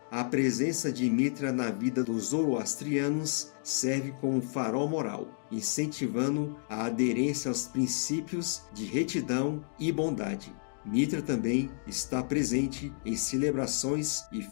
A presença de Mitra na vida dos zoroastrianos serve como um farol moral, incentivando a aderência aos princípios de retidão e bondade. Mitra também está presente em celebrações e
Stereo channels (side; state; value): right; silent; digital silence